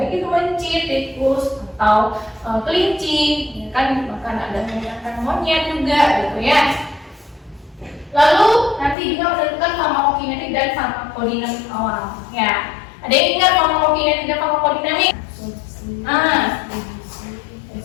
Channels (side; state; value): right; drops out; at 9.0 s